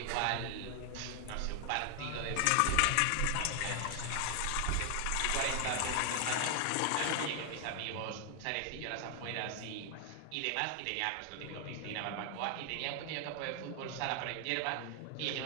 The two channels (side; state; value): both; different; correlation 0.00